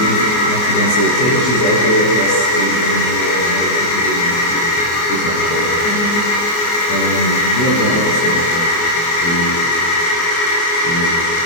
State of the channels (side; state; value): right; late; 24 ms